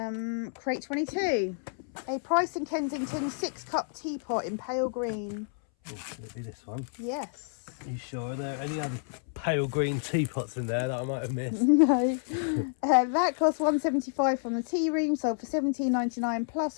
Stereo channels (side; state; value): right; silent; 58 dB below the other